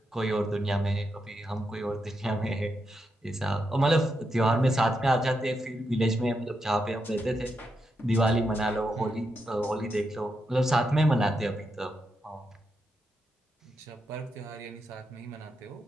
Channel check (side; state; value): both; normal; correlation 0.84